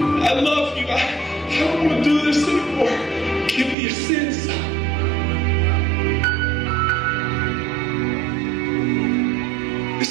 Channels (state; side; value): drops out; left; at 3.8 s